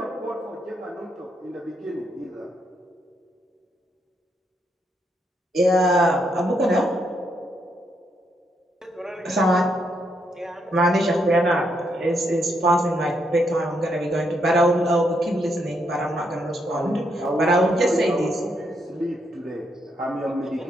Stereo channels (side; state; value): both; normal; correlation 0.77